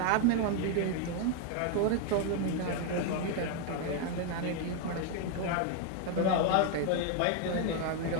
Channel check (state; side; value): different; both; correlation 0.01